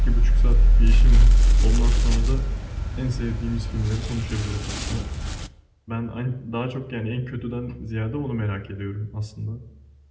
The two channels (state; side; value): identical; both; correlation 1.00